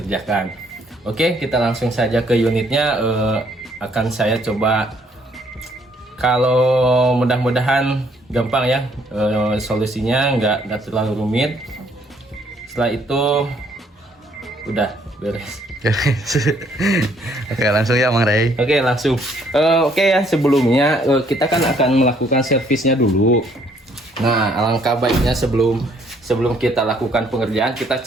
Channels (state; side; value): normal; both; correlation 0.66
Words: Oke, kita langsung saja ke unitnya. Akan saya coba, kalau mudah-mudahan gampang ya solusinya, nggak terlalu rumit. Setelah itu udah beres. Oke, langsung ya Mang Ray. Oke, langsung. Oke ya, sebelumnya kita kan akan melakukan servisnya dulu. Nah, alangkah baiknya sebelum kita lakukan pengerjaan, kita